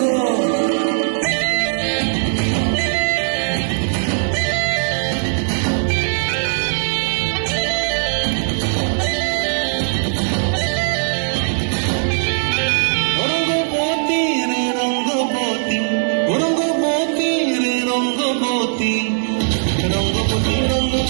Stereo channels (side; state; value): left; silent; digital silence